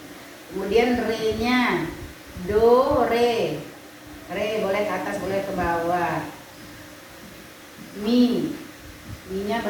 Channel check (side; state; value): both; identical; correlation 1.00